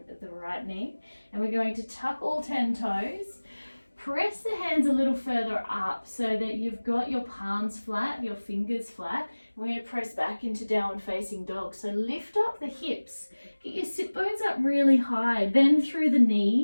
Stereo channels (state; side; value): inverted; both; correlation -1.00